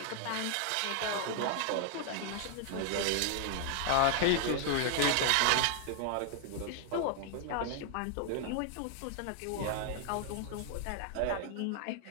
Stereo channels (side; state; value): both; different; correlation 0.00